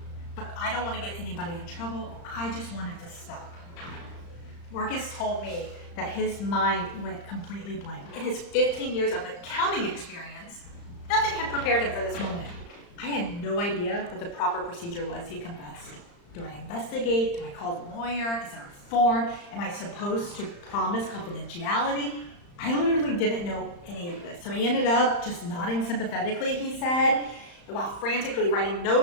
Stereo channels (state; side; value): late; right; 35 ms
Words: "But I don't want to get anybody in trouble. I just want it to stop." Marcus told me that his mind went completely blank. In his 15 years of accounting experience, nothing had prepared him for this moment. "I had no idea what the proper procedure was," he confessed. "Do I investigate? Do I call the lawyer? Is there a form? Am I supposed to promise confidentiality? I literally didn't know any of this." So he ended up just nodding sympathetically, he said, while frantically writing